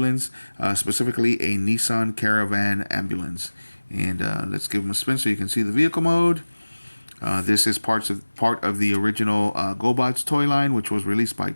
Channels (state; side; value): inverted; both; correlation -1.00